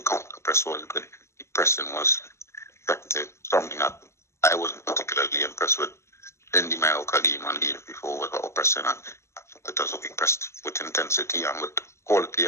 counter press was good. The pressing was effective. Something that I wasn't particularly impressed with in the Mallorca game and the game before, with our pressing, and it was impressed with intensity and with quality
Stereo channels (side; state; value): right; late; 0.13 ms